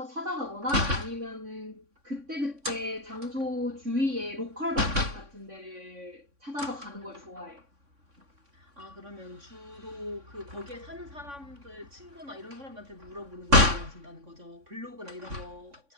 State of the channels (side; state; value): left; late; 3.6 ms